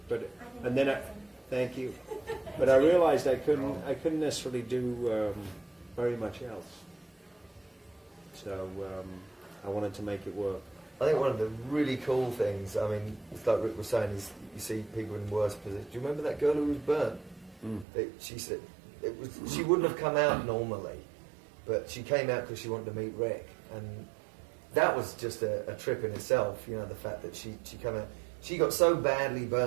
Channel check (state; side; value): drops out; left; at 17.9 s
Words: And then thank you. But I realized I couldn't necessarily do very much else. So I wanted to make it work. I think one of the really cool things, I mean, it's like Rick was saying, is you see people in worse positions. Do you remember that girl who was burnt? She said she wouldn't have come out normally, but she came out because she wanted to meet Rick, and that was just a trip in itself. You know, the fact that she came out, she got so badly